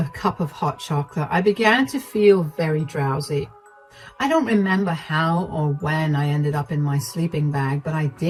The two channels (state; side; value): identical; both; correlation 1.00